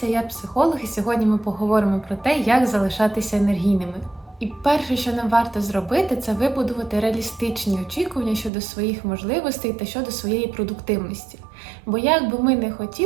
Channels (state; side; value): drops out; left; at 8.5 s